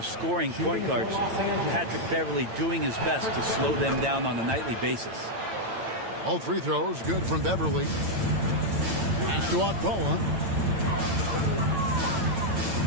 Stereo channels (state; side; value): late; left; 8.9 ms